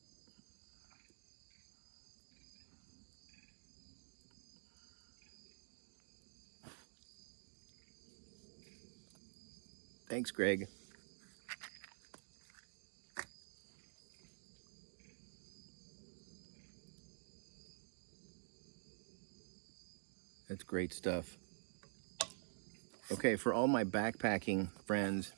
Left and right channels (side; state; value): left; silent; digital silence